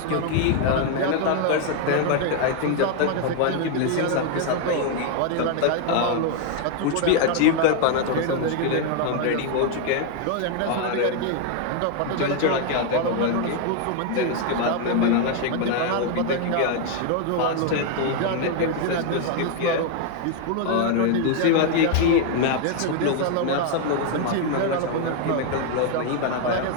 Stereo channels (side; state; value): both; different; correlation 0.01